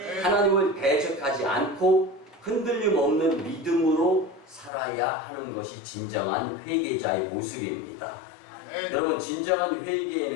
하나님을 대적하지 않고 흔들림 없는 믿음으로 살아야 하는 것이 진정한 회개자의 모습입니다. 아멘. 여러분, 진정한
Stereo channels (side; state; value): right; drops out; at 4.7 s